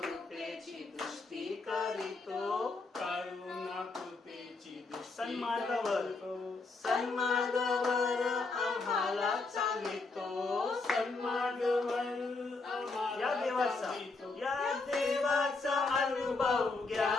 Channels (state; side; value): quieter; right; 3.8 dB